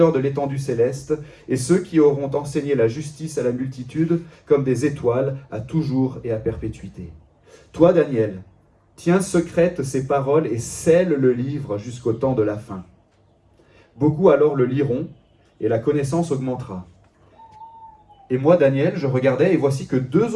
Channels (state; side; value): identical; both; correlation 1.00